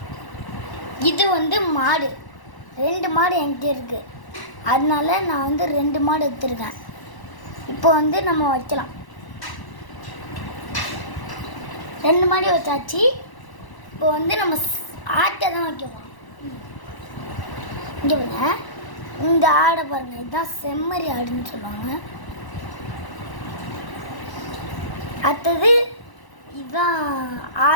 இது மாடு, 2 மாடு என்கிட்ட இருக்குது. அதனால நான் 2 மாடு எடுத்துருக்கேன். இப்போ நம்ம வைக்கலாம். 2 மாடி வச்சாச்சு. இப்போ நம்ம ஆட்டை தான் வைக்க போகிறோம். இங்கே பாருங்க, இந்த ஆடை பாருங்க, இதுதான் செம்மறி ஆடுன்னு சொல்லுவாங்க. அடுத்தது இதுதான்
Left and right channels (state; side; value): late; right; 1.0 ms